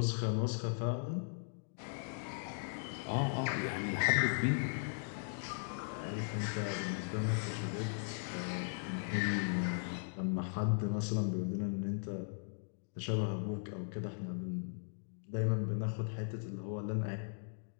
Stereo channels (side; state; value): right; silent; digital silence